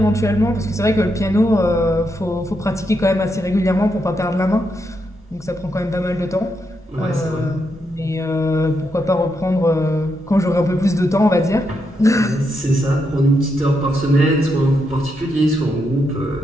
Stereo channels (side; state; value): both; normal; correlation 0.81